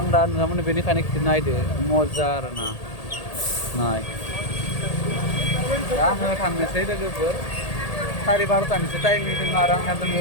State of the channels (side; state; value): right; late; 1.8 ms